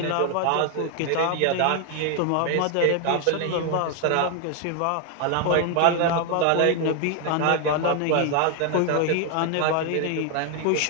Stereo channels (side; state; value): both; different; correlation 0.00